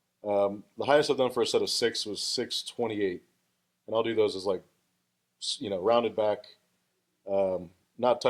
The highest I've done for a set of 6 was 628, and I'll do those as like, you know, rounded back, not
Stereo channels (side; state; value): both; identical; correlation 1.00